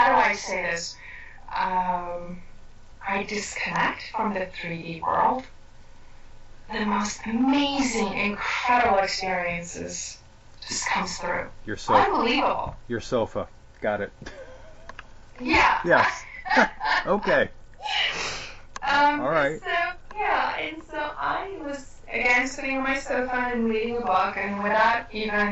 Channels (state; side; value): identical; both; correlation 1.00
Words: do I say this? I disconnect from the 3D world. The most amazing, incredible experiences just comes through. Your sofa. Unbelievable. Your sofa. Got it. Yeah. Yes. Okay. All right. And so I was again sitting on my sofa and reading a book, and without